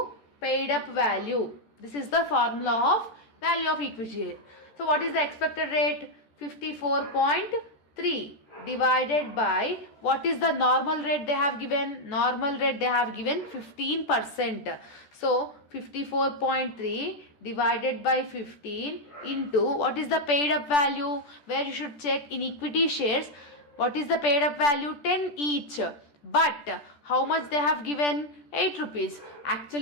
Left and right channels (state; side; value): late; right; 13 ms